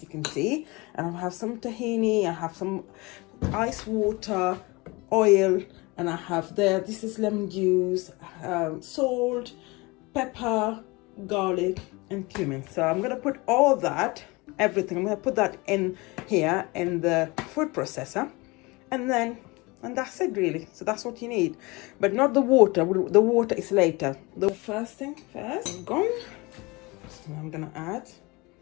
can see, and I have some tahini, I have some ice water, oil, and I have this is lemon juice, salt, pepper, garlic, and cumin. So I'm gonna put all that, everything, I'm gonna put that in here in the food processor, and that's it really. So that's what you need, but not the water. The water is later. The first thing first, gone. So I'm gonna add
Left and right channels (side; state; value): right; quieter; 24.7 dB